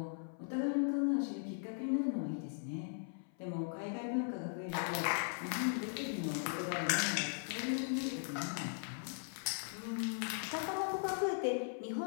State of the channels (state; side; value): silent; right; 52 dB below the other